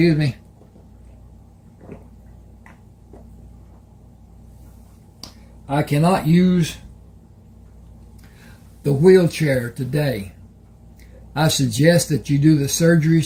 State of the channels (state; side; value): identical; both; correlation 1.00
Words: me. I cannot use the wheelchair today. I suggest that you do the